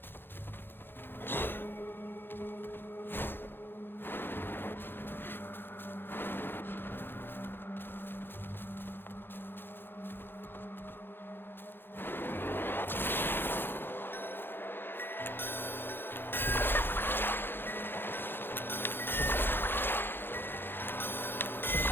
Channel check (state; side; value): late; right; 0.10 ms